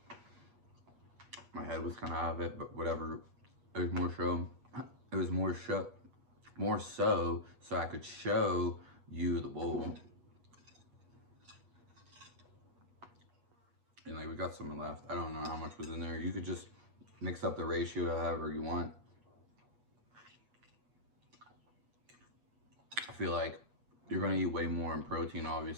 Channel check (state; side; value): late; left; 8.4 ms